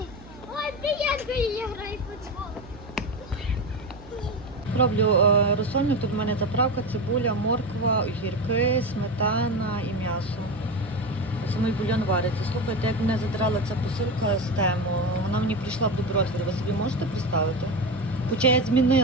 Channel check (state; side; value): noise; right; hum, 19 dB below the sound